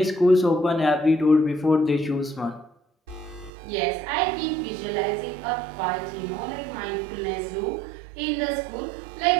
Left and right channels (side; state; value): left; drops out; at 3.5 s